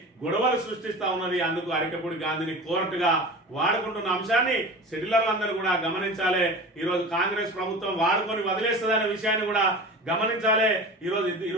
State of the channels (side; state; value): both; normal; correlation 0.34